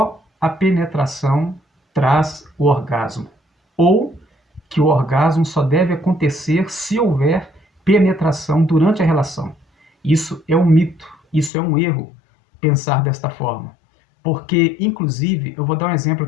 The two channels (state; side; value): drops out; right; at 11.5 s